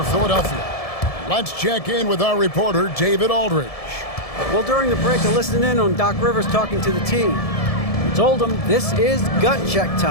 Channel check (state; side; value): late; right; 1.7 ms